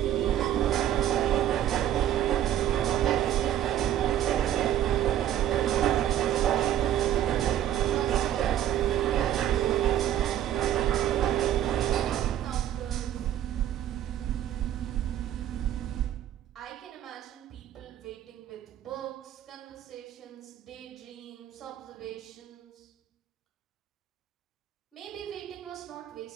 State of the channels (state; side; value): quieter; left; 11.5 dB